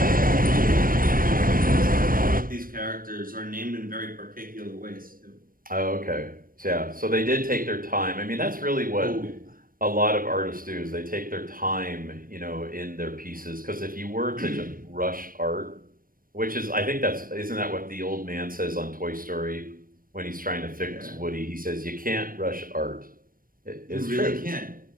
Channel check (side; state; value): left; late; 0.41 ms